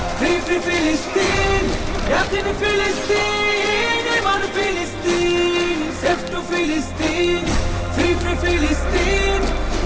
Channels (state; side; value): identical; both; correlation 1.00